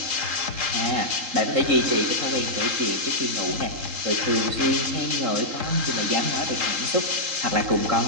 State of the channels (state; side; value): late; left; 3.8 ms